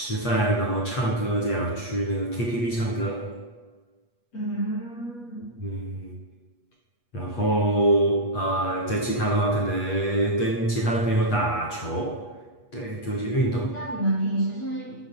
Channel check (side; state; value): right; late; 8.3 ms